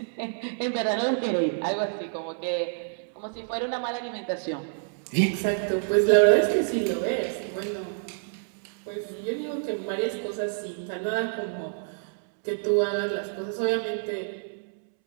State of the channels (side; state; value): left; silent; 60 dB below the other